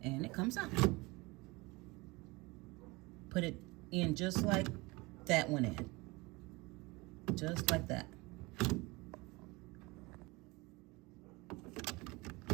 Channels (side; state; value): left; quieter; 24.2 dB